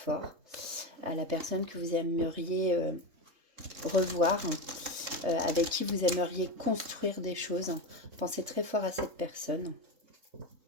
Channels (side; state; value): left; late; 3.8 ms